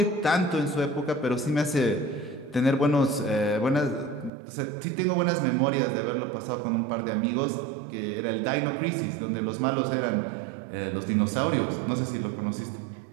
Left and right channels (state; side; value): drops out; left; at 4.3 s